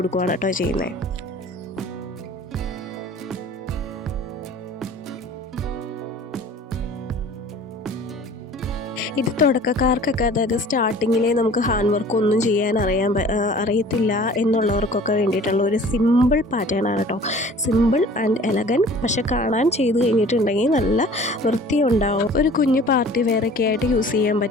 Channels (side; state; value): both; normal; correlation 0.47